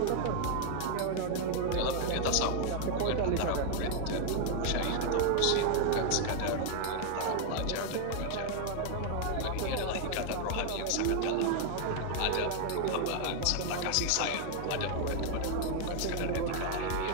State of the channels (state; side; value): different; both; correlation 0.00